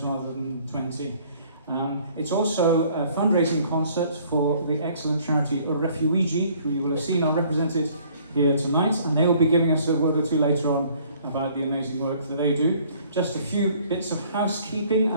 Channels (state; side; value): inverted; both; correlation -0.58